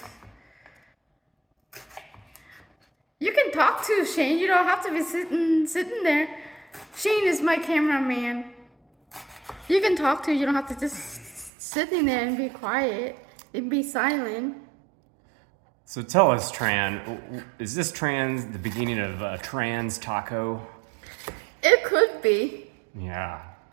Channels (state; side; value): drops out; left; at 11.5 s